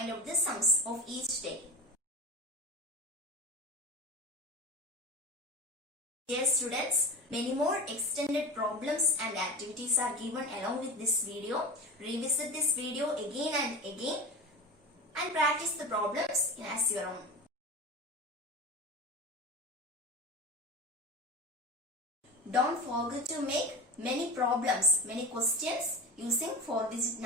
out the sums of each day. Dear students, many more extended problems and activities are given along with this video. Revisit this video again and again and practice the problems as your own. Don't forget to make many problems, many questions using 4-digit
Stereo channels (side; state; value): both; normal; correlation 0.29